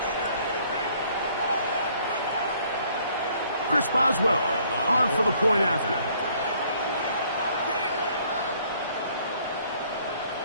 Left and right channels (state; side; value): inverted; both; correlation -0.62